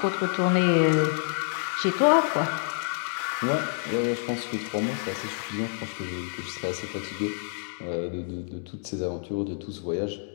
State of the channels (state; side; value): silent; right; digital silence